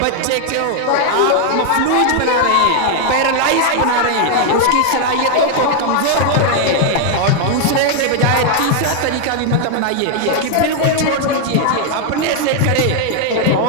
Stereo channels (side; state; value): both; different; correlation 0.00